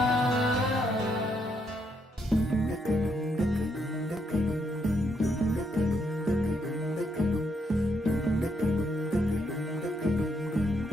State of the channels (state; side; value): normal; both; correlation 0.76